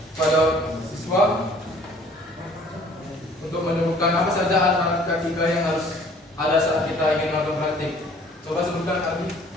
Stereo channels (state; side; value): normal; both; correlation 0.54